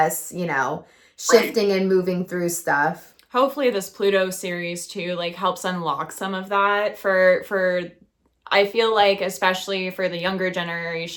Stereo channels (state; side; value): identical; both; correlation 1.00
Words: you know, shifting and moving through stuff. Hopefully this Pluto series too like helps unlock some of that for I feel like, especially for the younger